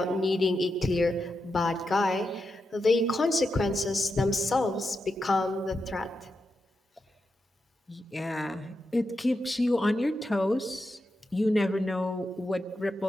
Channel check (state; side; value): normal; both; correlation 0.87